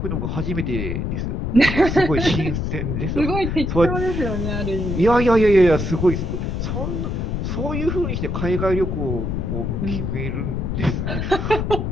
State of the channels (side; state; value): left; noise; rumble, 2 dB below the sound